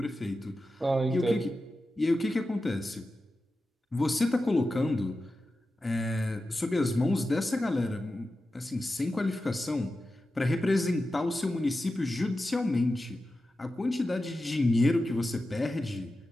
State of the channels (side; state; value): both; normal; correlation 0.92